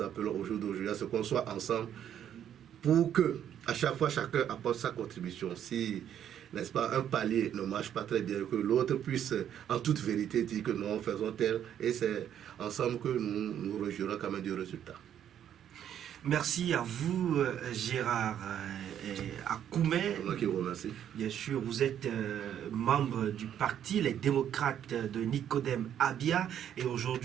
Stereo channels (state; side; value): quieter; left; 9.9 dB